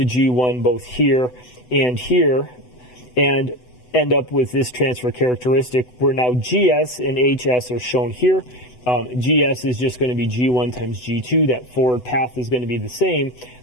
G1 both here, and end up with this transfer characteristic where now GS and HS are shown here. GS is just going to be G1 times G2. That forward path is going to be the same.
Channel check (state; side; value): late; right; 8.0 ms